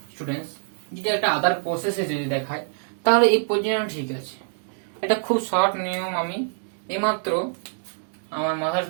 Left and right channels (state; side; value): silent; left; digital silence